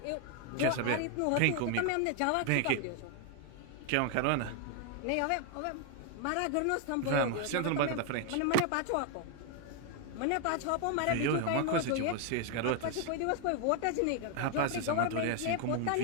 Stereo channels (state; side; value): different; both; correlation 0.00